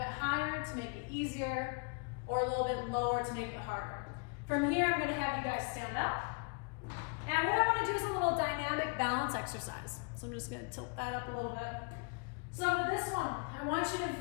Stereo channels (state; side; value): quieter; right; 36.0 dB